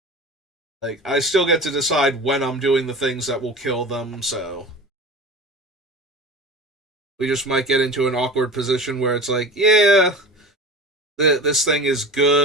Like, I still get to decide when I'm doing the things that will kill them, so we just might get into an awkward position where it's like, yeah, this thing is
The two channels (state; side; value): normal; both; correlation 0.34